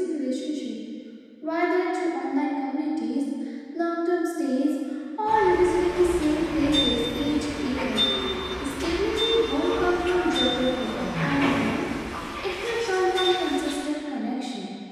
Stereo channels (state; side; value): identical; both; correlation 1.00